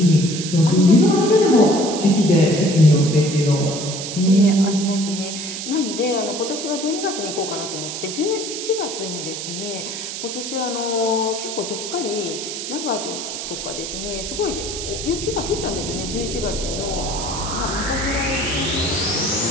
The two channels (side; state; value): right; noise; hiss, 6 dB below the sound